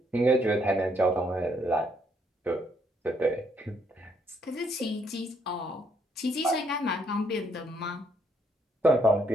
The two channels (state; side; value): normal; both; correlation 0.71